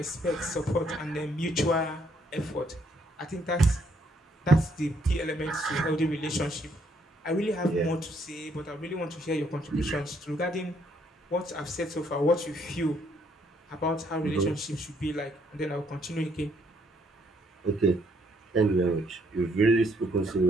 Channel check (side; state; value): both; normal; correlation 0.70